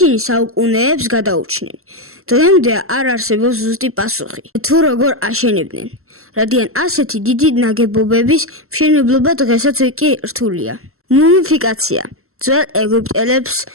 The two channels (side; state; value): left; late; 0.63 ms